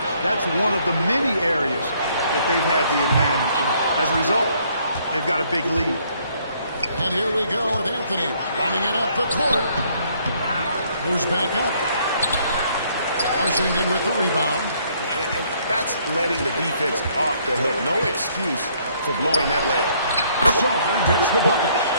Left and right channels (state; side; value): inverted; both; correlation -0.66